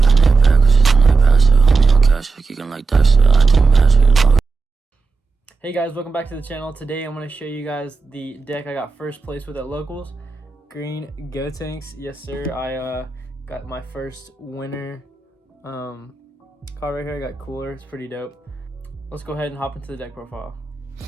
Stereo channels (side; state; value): left; quieter; 4.3 dB